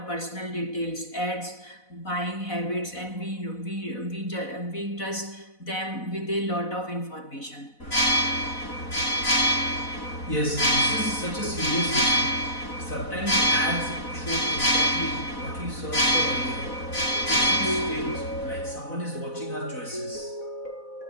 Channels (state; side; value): late; right; 4.0 ms